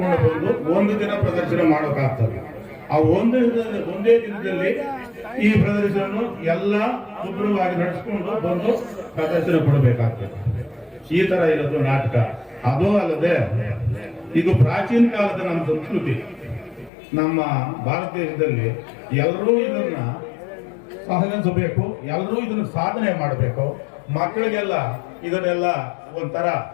ಬಂದು ಒಂದು ದಿನ ಪ್ರದರ್ಶನ ಮಾಡೋಕ್ಕಾಗ್ತದೆ. ಆ ಒಂದೇ ದಿನದಲ್ಲಿ ಈ ಪ್ರದರ್ಶನ ಎಲ್ಲ ಶುಭ್ರವಾಗಿ ನಡೆಸ್ಕೊಂಡು ಬಂದು ಪ್ರದರ್ಶನ ಕೊಡಬೇಕಾಗ್ತದೆ. ಈ ತರ ಇರೋದು ನಾಟಕ. ಅದು ಅಲ್ಲದೆ ಇದು ಪ್ರಾಚೀನ ಕಾಲದ ನಮ್ಮ ಸಂಸ್ಕೃತಿ. ನಮ್ಮ ಭಾರತ ದೇಶದಲ್ಲಿ ಎಲ್ಲರೂ ಇದನ್ನ ಸಹನಿಸಬೇಕು, ಎಲ್ಲರೂ ಇದನ್ನ ಸಾಧನೆ ಮಾಡಬೇಕು. ಮಕ್ಕಳಿಗೆಲ್ಲ ಇದನ್ನೆಲ್ಲ ಒಂಥರ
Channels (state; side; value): drops out; right; at 16.9 s